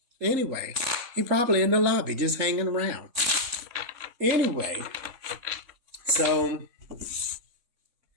Anyway, he probably in the lobby just hanging around. Anyway, so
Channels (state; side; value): late; left; 3.5 ms